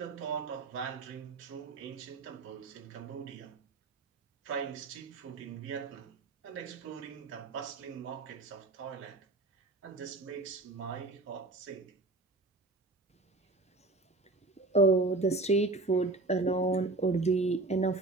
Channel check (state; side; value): quieter; left; 3.3 dB